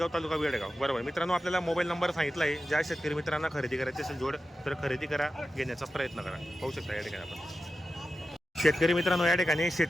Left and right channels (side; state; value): both; normal; correlation 0.92